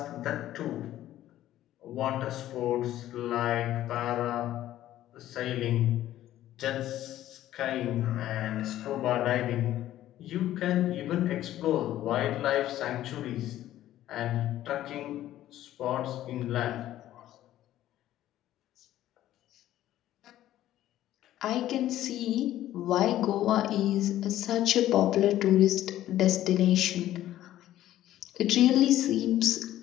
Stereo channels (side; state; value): right; quieter; 13.4 dB